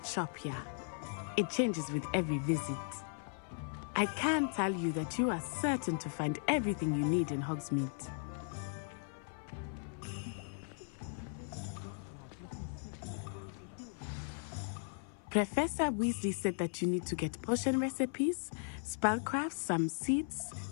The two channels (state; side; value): silent; right; 53 dB below the other